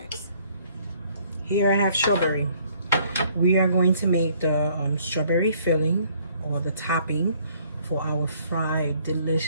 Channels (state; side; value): inverted; both; correlation -0.61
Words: Here I have strawberry. We are going to make the strawberry filling, or the topping, for our